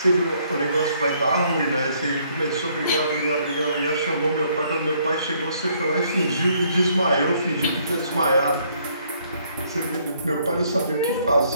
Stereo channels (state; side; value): inverted; both; correlation -0.67